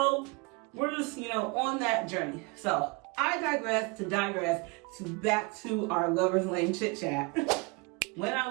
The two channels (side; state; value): left; quieter; 28.7 dB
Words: we're just, on that journey. So I digress to back to our Lovers Lane Chit Chat. When I